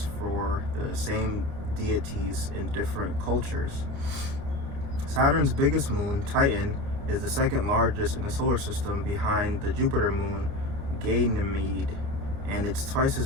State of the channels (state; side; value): late; left; 29 ms